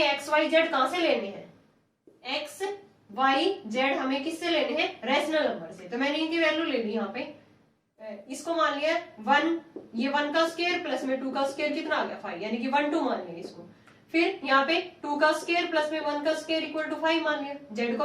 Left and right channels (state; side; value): identical; both; correlation 1.00